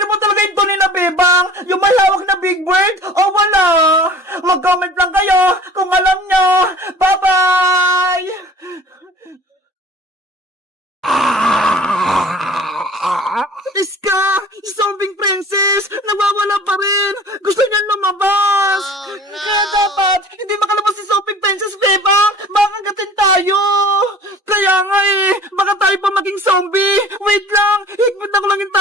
po talaga yung tunay na Bebang? Yung may hawak na Big Bird? O wala? Mag-comment lang kayo kung alam nyo! Bye-bye! Iska! Zombie Princess! Nawawala pa rin! Gusto niya lumabas! Kaya dapat, hindi makalabas si Zombie Princess, Bebang! Makagatin tayo! Kaya nga baka tayo pa maging zombie! Wait lang! Higpit ako lang yung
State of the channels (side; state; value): both; normal; correlation 0.45